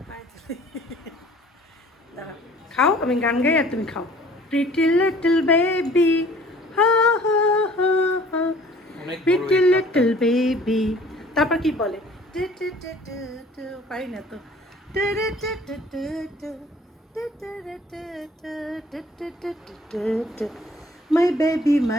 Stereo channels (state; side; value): normal; both; correlation 0.52